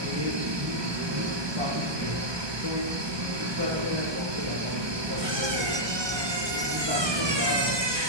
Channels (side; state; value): left; late; 1.2 ms